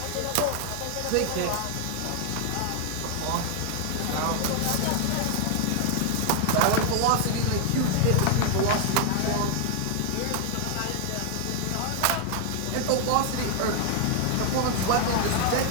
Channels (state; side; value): different; both; correlation 0.00